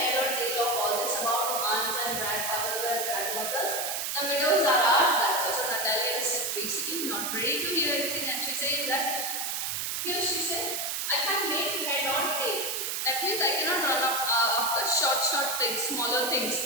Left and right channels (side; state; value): right; noise; hiss, 1 dB below the sound